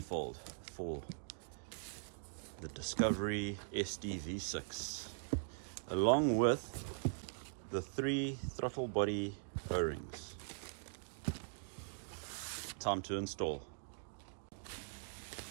for the Discovery SD-V6, along with the 3 throttle body O-rings. Time to install.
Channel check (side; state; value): left; silent; digital silence